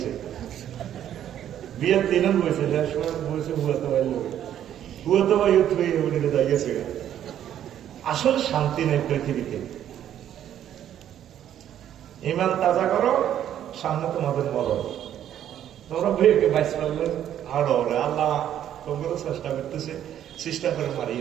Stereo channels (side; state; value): left; quieter; 10.7 dB